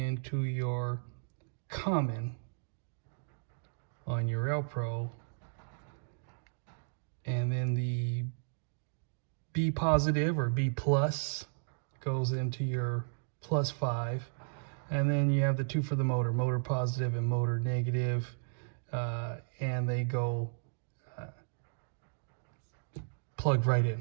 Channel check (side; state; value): left; silent; digital silence